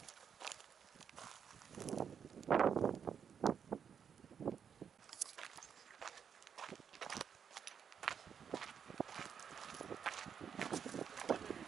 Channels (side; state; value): left; quieter; 7.4 dB